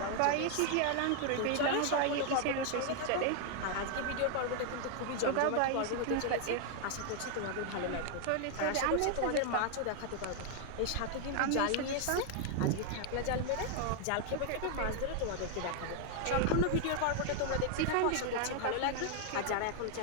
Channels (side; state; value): both; different; correlation 0.00